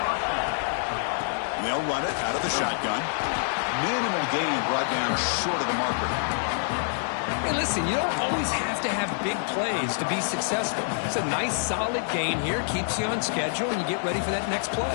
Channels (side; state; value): right; silent; digital silence